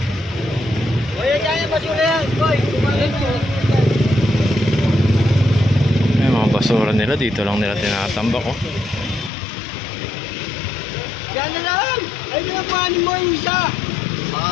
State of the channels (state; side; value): drops out; right; at 9.3 s